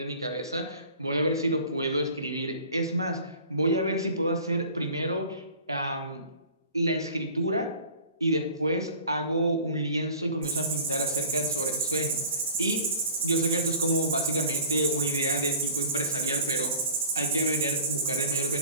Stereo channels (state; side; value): inverted; both; correlation -0.44